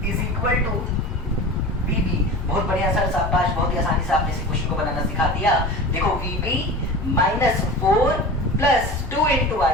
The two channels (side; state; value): both; normal; correlation 0.33